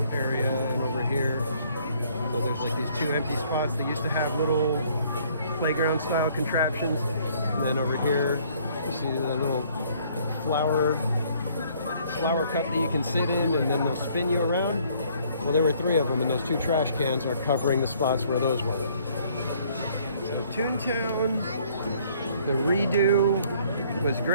area and over here. So there's like these two empty spots that used to have little playground style contraptions. And then over here, you see the little flower cup that you can sit in and then they'll spin you around. Well, there were 3 of them and those 2 trash cans are covering the spots where those were. So Toontown, the redo was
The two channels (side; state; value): both; inverted; correlation -0.62